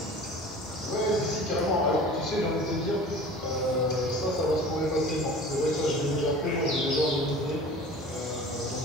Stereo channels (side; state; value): both; normal; correlation 0.41